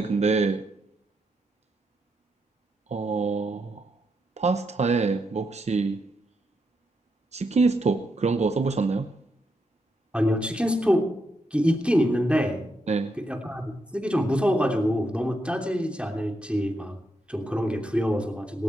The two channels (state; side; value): normal; both; correlation 0.81